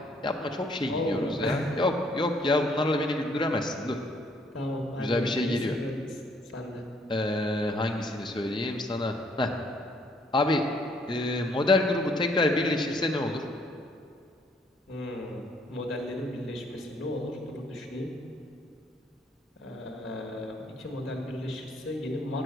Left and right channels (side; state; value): both; normal; correlation 0.66